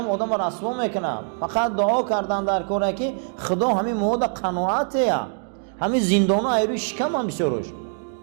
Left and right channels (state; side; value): silent; left; 63 dB below the other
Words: آدم رسوا میکنه. فقط دعا کردن در کاره که خدا همین مود قناعته، همین زندان ها ایروی شکم هم بسیارش،